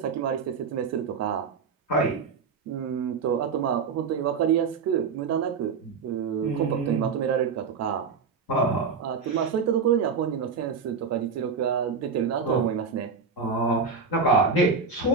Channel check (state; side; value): quieter; left; 5.3 dB